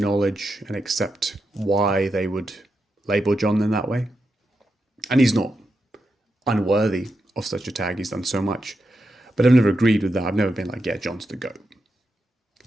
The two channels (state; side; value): normal; both; correlation 0.86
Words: and accept why they would label John in that way. And he's not unworthy of such a tag. He's done so much. But I've never agreed with that. I've never been like, yeah, John's the GOAT.